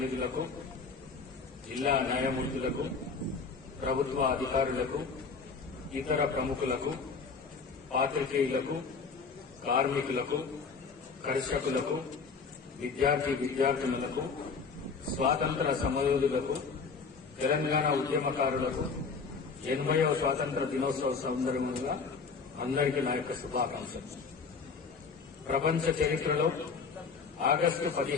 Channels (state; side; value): quieter; right; 5.1 dB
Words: జిల్లా న్యాయమూర్తులకు, ప్రభుత్వ అధికారులకు, ఇతర ప్రముఖులకు, పాత్రికేయులకు, కార్మికులకు, కర్షకులకు, విద్యార్థినులకు, స్వాతంత్ర సమరయోధులకు, తెలంగాణ ఉద్యమకారులకు 80వ స్వాతంత్ర దినోత్సవ సందర్భంగా అందరికీ నా యొక్క శుభాకాంక్షలు. ప్రపంచ చరిత్రలో ఆగస్టు